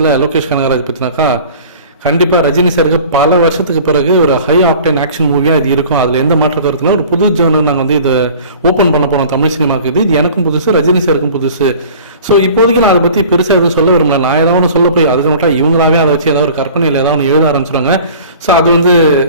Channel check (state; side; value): inverted; both; correlation -0.45